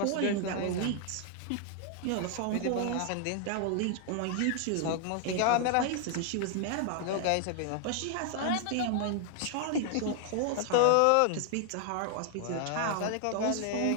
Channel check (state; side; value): different; both; correlation 0.00